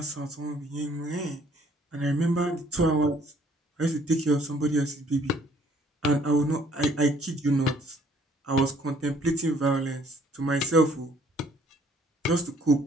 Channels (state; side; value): normal; both; correlation 0.61